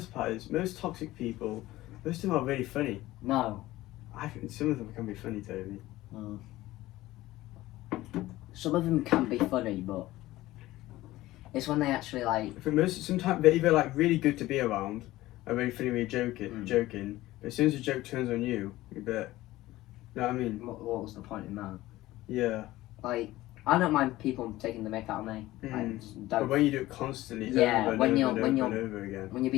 part is. Most toxic people, most of them are really funny. No. I think some of them can be funny, Toby. Some of them can be funny, but it's when they actually like. I think sometimes they're either like really good to be around, or really funny when you're joking. But as soon as the joke turns on you, you bet. You know what I mean? What was the point in that? Yeah. Like, I don't mind people taking the mick out of me. But when you do it constantly, when you're over again, when you're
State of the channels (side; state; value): right; quieter; 17.0 dB